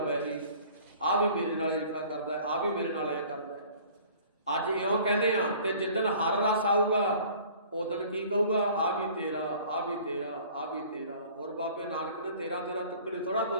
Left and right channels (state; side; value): inverted; both; correlation -0.49